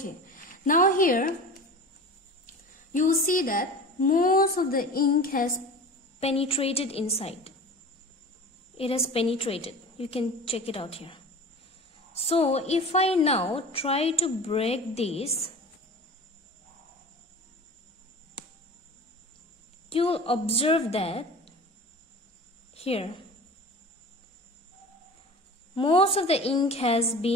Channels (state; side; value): normal; both; correlation 0.36